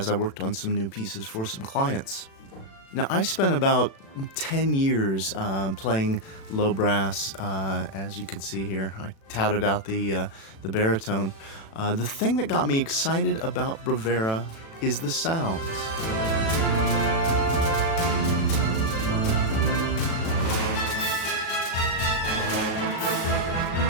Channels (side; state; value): right; late; 36 ms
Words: I worked on some new pieces for some clients. Now, I spent about 10 years playing low brass, as you can see here. I touted out the baritone. The thing that got me excited about Bravura is the sounds.